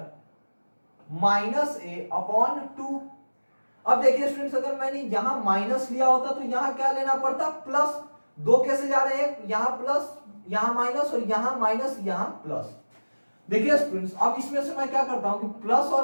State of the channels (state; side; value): inverted; both; correlation -1.00